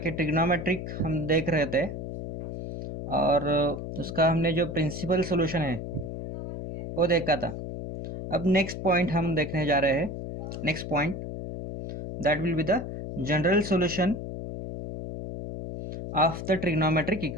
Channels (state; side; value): noise; left; hum, 7 dB below the sound